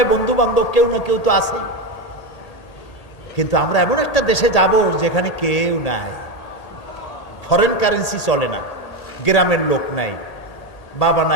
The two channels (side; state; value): right; late; 1.8 ms